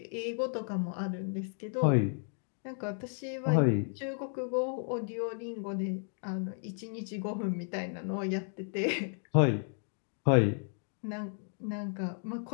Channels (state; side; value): silent; right; 55 dB below the other